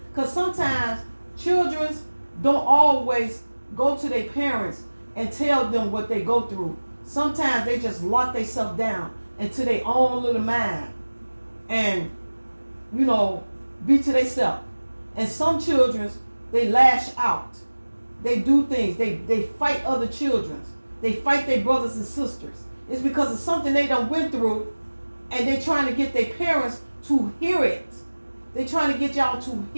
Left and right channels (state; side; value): inverted; both; correlation -1.00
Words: Because sometimes children don't always go to their parents and tell them what they go through. Sometimes they just lock themselves down into their own little mind and, be to themselves. And some children, they lash out. They do things. They fight other children. They fight their brothers and sisters. It's because of something they done went through, and they're trying to get their parents to hear it. They're trying to get y'all to